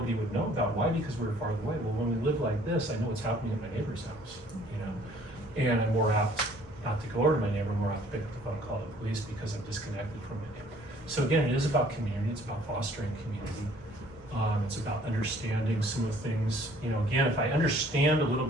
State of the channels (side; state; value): both; normal; correlation 0.57